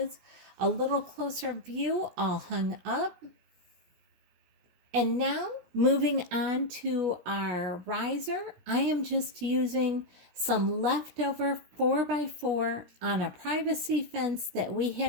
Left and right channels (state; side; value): late; left; 17 ms